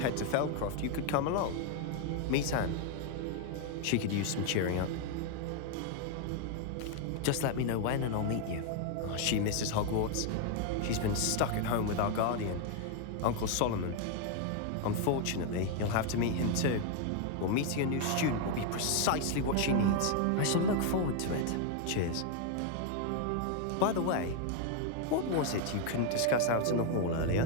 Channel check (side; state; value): both; different; correlation 0.00